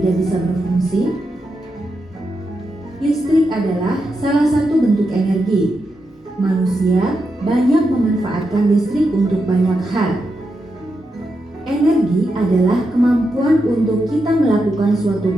bisa berfungsi? Listrik adalah salah satu bentuk energi. Manusia banyak memanfaatkan listrik untuk banyak hal. Energi adalah kemampuan untuk kita melakukan suatu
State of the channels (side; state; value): both; normal; correlation 0.86